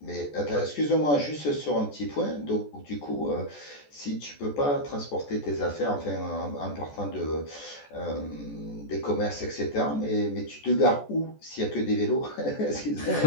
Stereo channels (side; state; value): right; late; 14 ms